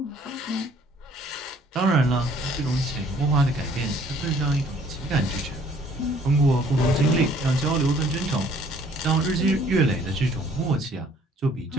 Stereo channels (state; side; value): normal; both; correlation 0.59